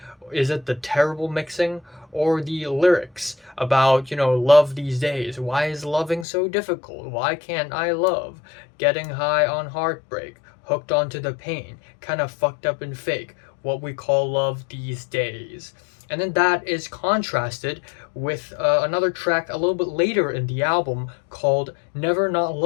Is it the terrible mixing? Or the lyrics about, love these days? Why is loving so difficult? Why can't I love? Getting high on heartbreak, hooked onto the pain, kind of fucked up and fake, what we call love these days. And then that is contrasted with another track a little bit later in the album called Never Not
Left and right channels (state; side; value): drops out; right; at 6.2 s